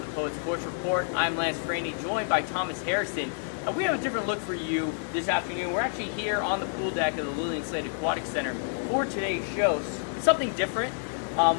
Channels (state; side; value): silent; right; 59 dB below the other